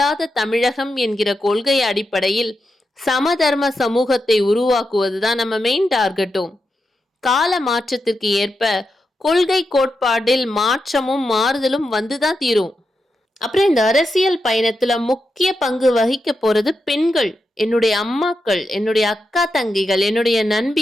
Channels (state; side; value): normal; both; correlation 0.87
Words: தமிழகம் என்கிற கொள்கை அடிப்படையில் சமதர்ம சமூகத்தை உருவாக்குவதுதான் நம்ம மெயின் டார்கெட்டும். கால மாற்றத்திற்கு ஏற்ப கொள்கை கோட்பாட்டில் மாற்றமும் மாறுதலும் வந்துதான் தீரும். அப்புறம் இந்த அரசியல் பயணத்துல முக்கிய பங்கு வகிக்க போறது பெண்கள், என்னுடைய அம்மாக்கள், என்னுடைய அக்கா தங்கைகள், என்னுடைய